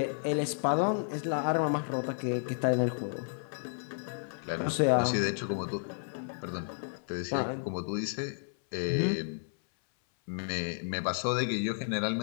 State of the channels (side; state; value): right; silent; 56 dB below the other